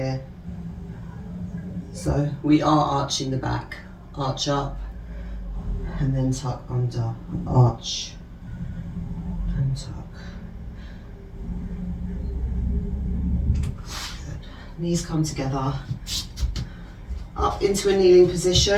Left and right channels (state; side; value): identical; both; correlation 1.00